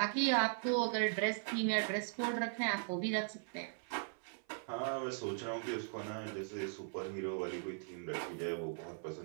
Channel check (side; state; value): left; silent; 52 dB below the other